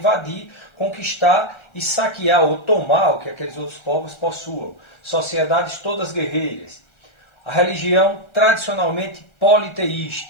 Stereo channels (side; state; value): right; late; 1.3 ms